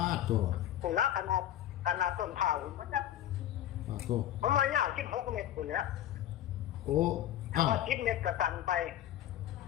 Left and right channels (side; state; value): right; quieter; 12.1 dB